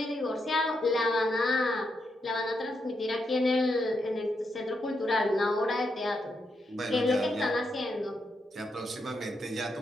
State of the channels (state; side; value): normal; both; correlation 0.82